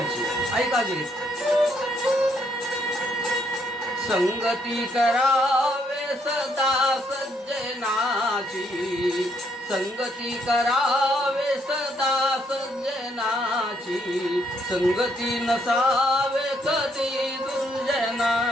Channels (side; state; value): both; normal; correlation 0.71